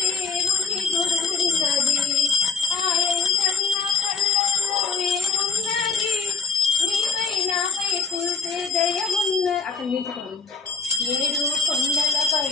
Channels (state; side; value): quieter; right; 4.5 dB